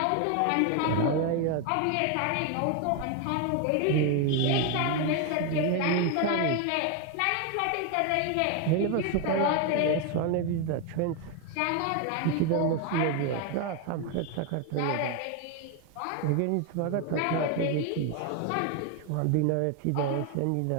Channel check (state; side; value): different; both; correlation 0.01